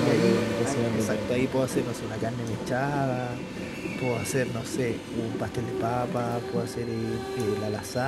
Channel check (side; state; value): both; identical; correlation 1.00